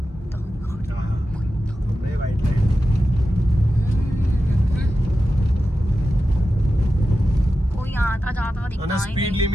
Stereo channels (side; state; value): both; normal; correlation 0.92